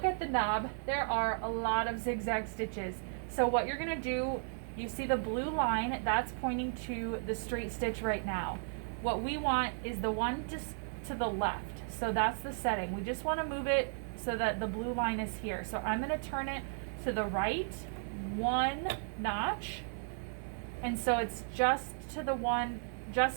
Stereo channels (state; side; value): silent; left; 54 dB below the other